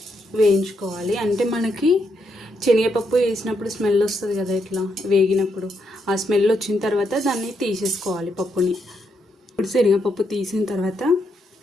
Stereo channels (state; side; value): normal; both; correlation 0.79